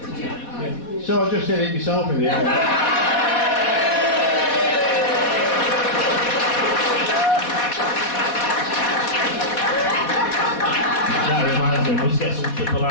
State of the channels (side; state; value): right; late; 4.1 ms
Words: So I just did it myself in the end. That reminds me, we must get some triple